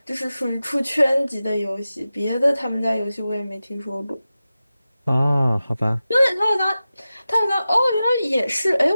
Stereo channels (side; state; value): both; inverted; correlation -0.94